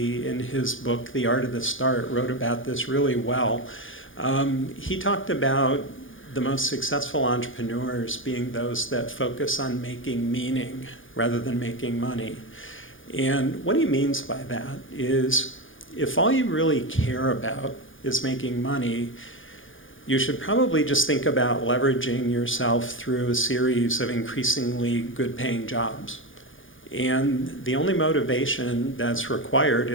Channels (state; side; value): late; right; 0.58 ms